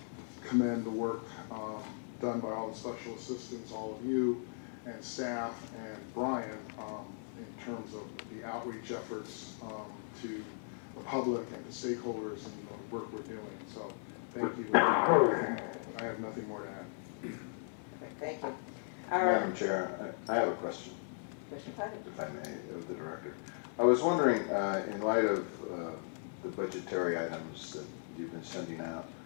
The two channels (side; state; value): right; silent; 53 dB below the other